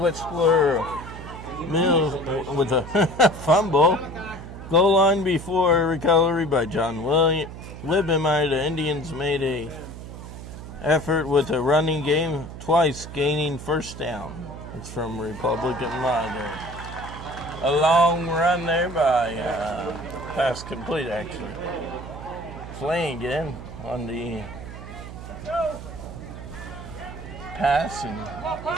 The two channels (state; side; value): noise; right; hum, 12 dB below the sound